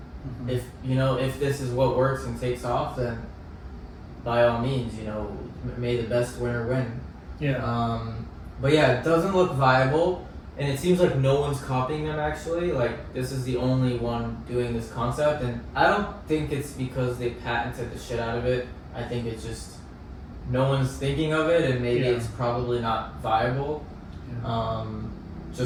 Mm-hmm. If this is what works and takes off, then by all means, may the best winner win. Yeah. But yeah, it doesn't look viable, and it seems like no one's copying them actually. Like this is the only one doing this concept, and I don't think it's because they patented the shit out of it. I think it's just no one's thinking of it, and maybe Yeah. it's probably not viable. Yeah.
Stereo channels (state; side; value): identical; both; correlation 1.00